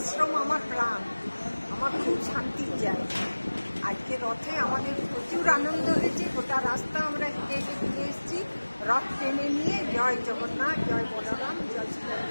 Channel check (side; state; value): both; inverted; correlation -1.00